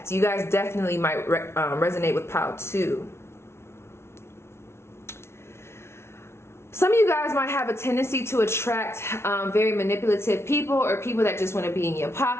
You guys definitely might resonate with pile 2. Some of you guys might have a tendency to attract very manipulative people, or people that just want to be in your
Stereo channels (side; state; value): right; late; 0.12 ms